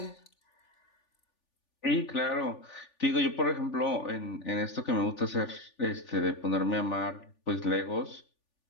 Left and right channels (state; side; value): late; right; 3.4 ms